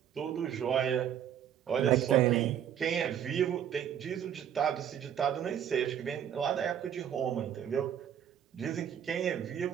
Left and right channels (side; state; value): left; quieter; 9.5 dB